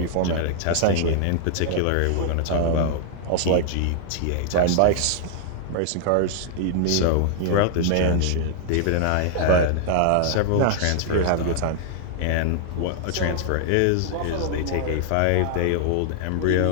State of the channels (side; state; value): both; different; correlation -0.01